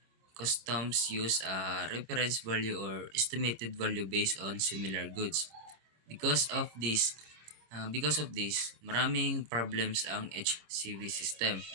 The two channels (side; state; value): left; late; 26 ms